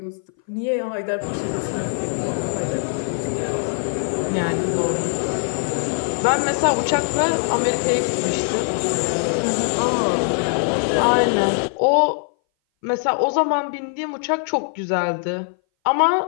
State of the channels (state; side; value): silent; right; 59 dB below the other